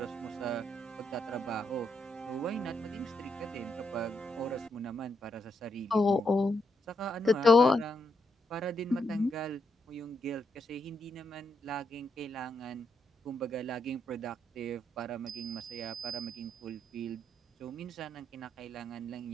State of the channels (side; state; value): both; normal; correlation 0.79